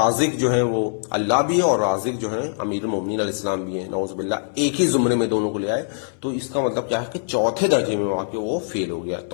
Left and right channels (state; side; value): silent; right; 61 dB below the other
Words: جو ہے وہ اللہ بھی ہے اور رازق جو ہے امیر المومنین علیہ السلام بھی ہیں، نعوذ باللہ، ایک ہی زمرے میں دونوں کو لے آئے، تو اس کا مطلب کیا ہے کہ چوتھے درجے میں واقع وہ فیل ہو گیا۔